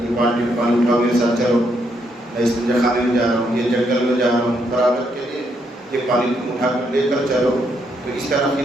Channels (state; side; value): normal; both; correlation 0.76